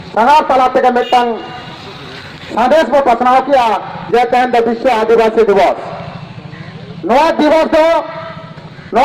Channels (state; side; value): identical; both; correlation 1.00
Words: तलाते के मिट्टंग संदेश में पसनाव किया जे तेहन विश्व आदिवासी दिवस नया दिवस